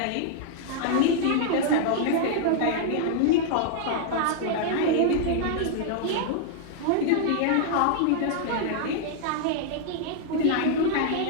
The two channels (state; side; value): different; both; correlation -0.01